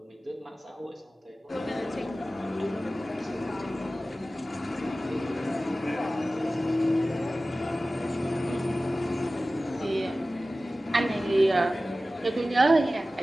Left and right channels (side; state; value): both; normal; correlation 0.96